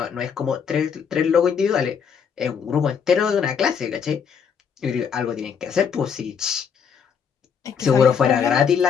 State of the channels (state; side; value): quieter; right; 7.0 dB